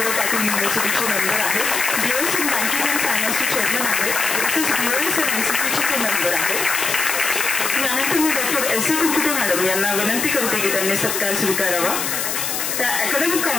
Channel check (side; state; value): left; noise; hiss, 1 dB below the sound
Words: Patil युनिव्हर्सिटीचे मेंबर आहेत. BOS इन बँकिंग अँड फायनान्सचे चेअरमन आहेत. तसेच BOS इन NCCचे ते मेंबर आहेत. यानंतर मी डॉक्टर S.A. कुरकुटे मॅडम यांना विनंती करते की त्यांनी सत्कार स्वीकारावा. त्या अकॅडमिक